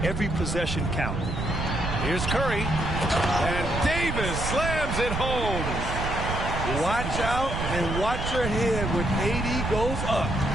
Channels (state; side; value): noise; right; rumble, 3 dB below the sound